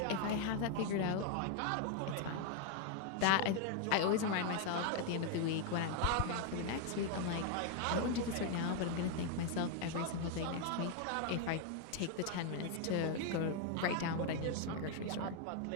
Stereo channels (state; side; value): different; both; correlation 0.00